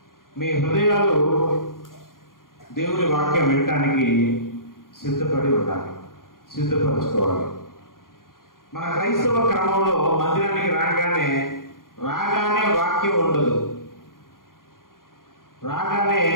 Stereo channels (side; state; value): right; late; 0.91 ms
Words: మీ హృదయాలు దేవుని వాక్యం వినటానికి సిద్ధపడి ఉండాలి, సిద్ధపరచుకోవాలి. మన క్రైస్తవ క్రమంలో మందిరానికి రాగానే వాక్యం ఉండదు. రాగానే